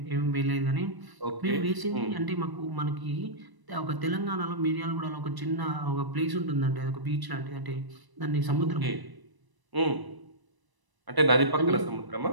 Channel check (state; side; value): late; left; 1.0 ms